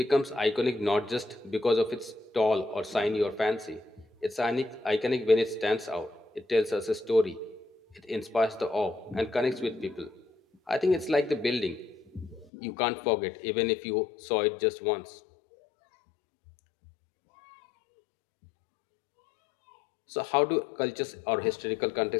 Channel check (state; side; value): drops out; right; at 12.5 s